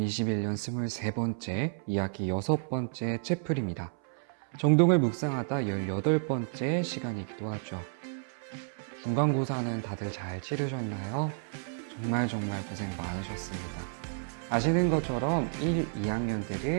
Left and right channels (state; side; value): silent; left; 57 dB below the other